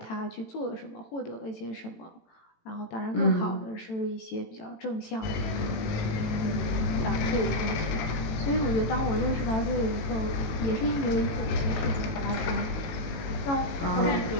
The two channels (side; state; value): right; late; 19 ms